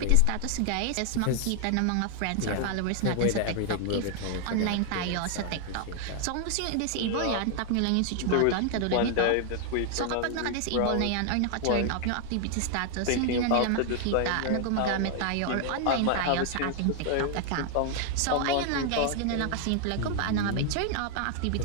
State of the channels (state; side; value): different; both; correlation 0.00